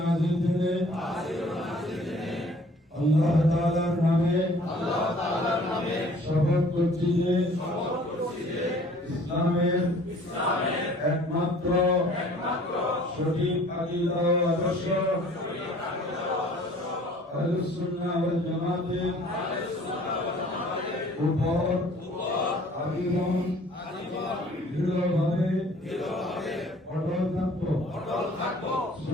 दिने अल्लाह ताआलार नामे शपथ করছি যে ইসলামের একমাত্র সঠিক আকীদা ও আদর্শ আহলুস সুন্নাহ ওয়াল জামাতের উপর আজীবন দৃঢ়ভাবে অটল থাকব।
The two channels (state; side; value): normal; both; correlation 0.53